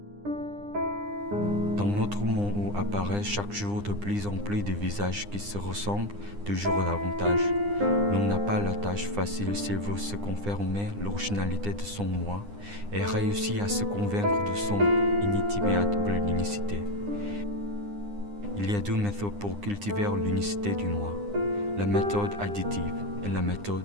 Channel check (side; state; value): left; late; 9.8 ms